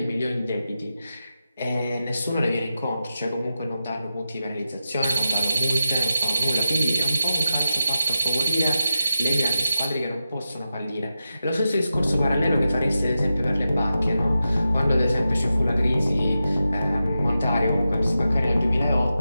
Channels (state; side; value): inverted; both; correlation -0.90